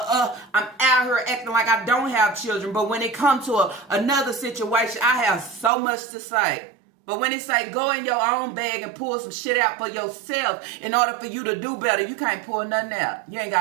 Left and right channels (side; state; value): left; drops out; at 5.7 s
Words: out here acting like I don't have children. But when it comes to another situation, I have so much to say. But when it say go in your own bag and pull some shit out for yourself in order for you to do better, you can't pull nothing out. You ain't